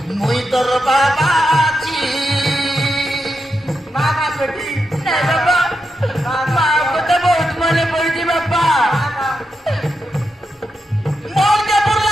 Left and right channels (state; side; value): normal; both; correlation 0.86